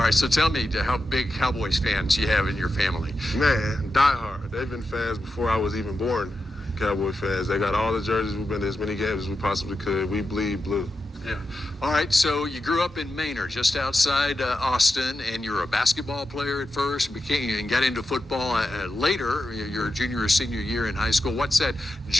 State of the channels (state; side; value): normal; both; correlation 0.89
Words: right, so tell me how big Cowboys fans you have in your family. Man, diehard. They've been fans before I was even born. Cowboy fans. They got all the jerseys. We've been to as many games as we possibly could. We bleed blue. Yeah. All right, so you grew up in Manor, just outside Austin, and you're a basketball player at first, and got into football later, your junior or senior year in high school. What's that